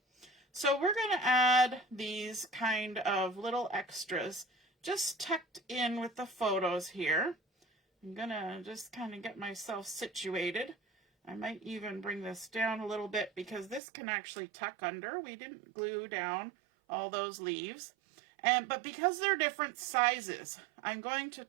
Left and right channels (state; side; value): drops out; left; at 13.8 s